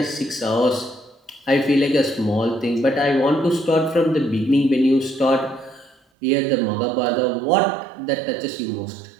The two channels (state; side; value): drops out; left; at 6.0 s